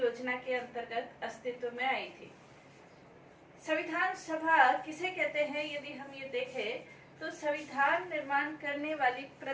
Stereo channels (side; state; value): both; identical; correlation 1.00